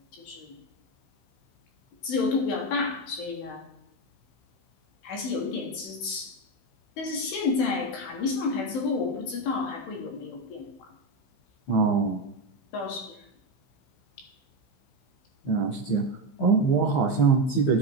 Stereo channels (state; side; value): late; right; 16 ms